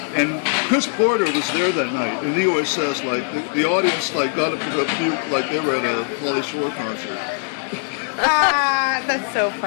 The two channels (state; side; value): silent; right; 62 dB below the other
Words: And Chris Porter was there that night, and he always says like the audience like got up to go puke like they were at a Pauly Shore concert. That's so